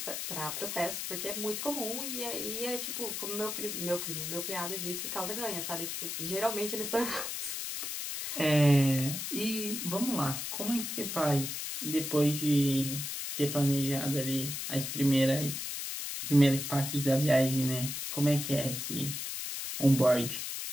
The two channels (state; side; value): noise; left; hiss, 4 dB below the sound